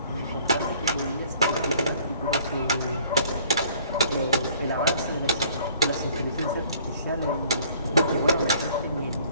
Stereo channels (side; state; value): both; inverted; correlation -0.56